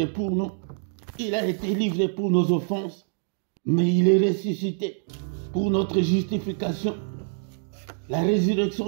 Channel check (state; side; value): silent; left; digital silence